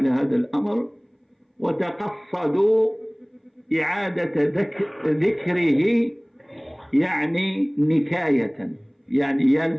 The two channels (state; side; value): identical; both; correlation 1.00